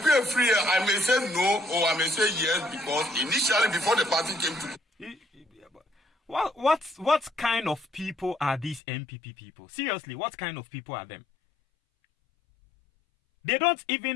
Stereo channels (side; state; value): right; drops out; at 8.8 s